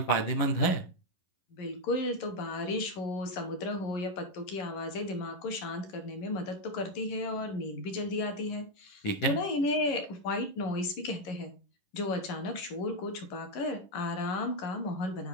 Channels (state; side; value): late; right; 11 ms